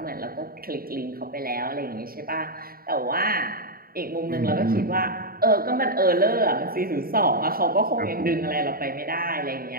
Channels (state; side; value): late; left; 0.43 ms